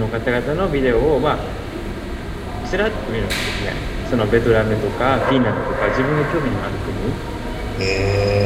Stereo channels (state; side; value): identical; both; correlation 1.00